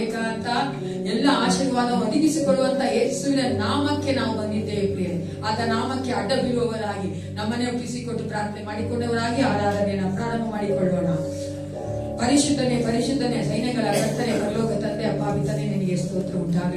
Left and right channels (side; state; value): both; identical; correlation 1.00